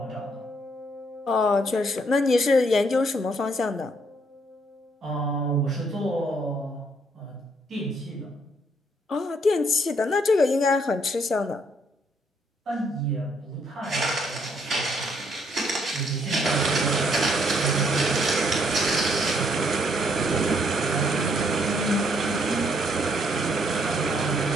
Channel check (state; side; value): normal; both; correlation 0.70